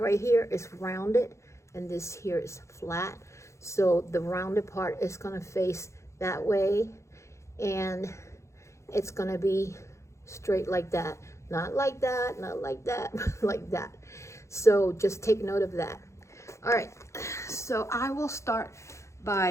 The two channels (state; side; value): late; right; 0.14 ms